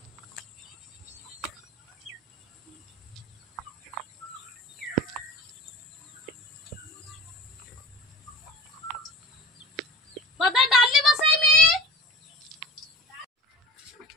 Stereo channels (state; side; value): normal; both; correlation 0.35